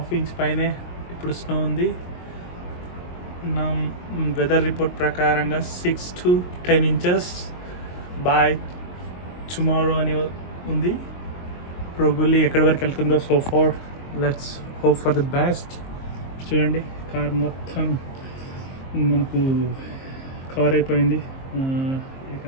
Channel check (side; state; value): right; late; 22 ms